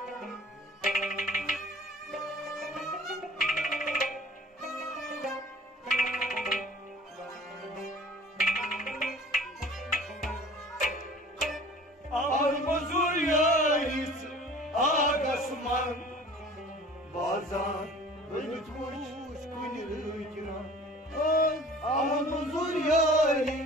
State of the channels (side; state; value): both; normal; correlation 0.46